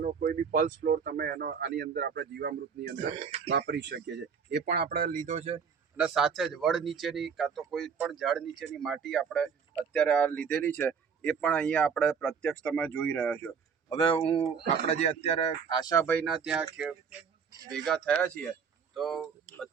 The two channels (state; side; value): quieter; left; 6.4 dB